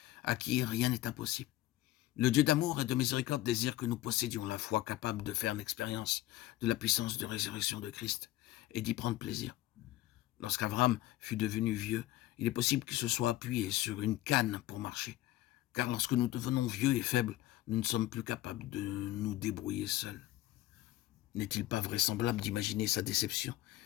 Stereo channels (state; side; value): quieter; right; 15.5 dB